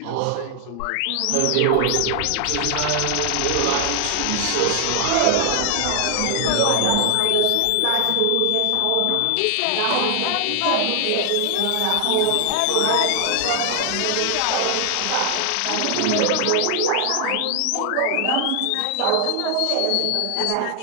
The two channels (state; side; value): different; both; correlation 0.00